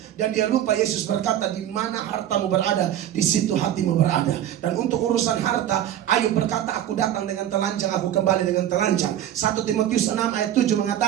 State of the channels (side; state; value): left; quieter; 11.4 dB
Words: Dan dia lupa Yesus berkata, di mana hartamu berada, di situ hatimu berada. Dan untuk urusan harta, Ayub berkata, aku datang dengan telanjang, aku kembali dengan telanjang. 1 Timotius 6 ayat 7